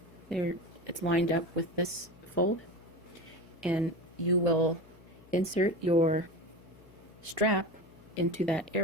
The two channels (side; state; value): left; noise; hum, 24 dB below the sound